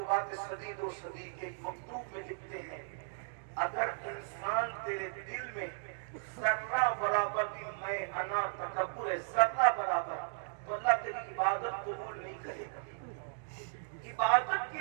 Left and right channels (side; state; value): left; silent; digital silence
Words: صدید و صدیق کے مکتوب میں لکھتے ہیں، اگر انسان تیرے دل میں ذرہ برابر بھی میں انا تکبر ہے، ذرہ برابر، تو اللہ تیری عبادت قبول نہیں کرے گا۔ عبادت کی